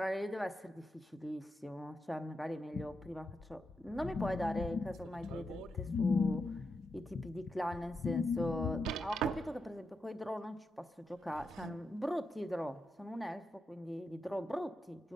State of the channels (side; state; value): both; normal; correlation 0.86